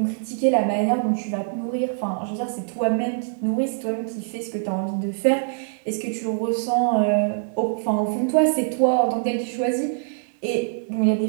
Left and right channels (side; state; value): left; silent; digital silence